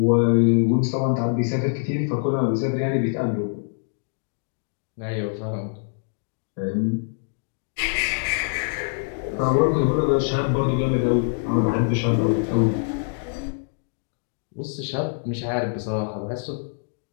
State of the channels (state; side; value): silent; right; digital silence